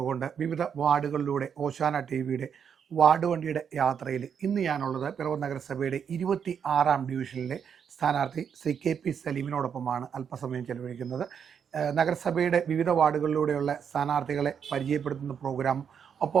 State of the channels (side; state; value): left; quieter; 7.5 dB